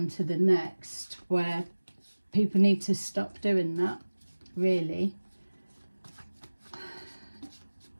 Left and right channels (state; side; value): inverted; both; correlation -1.00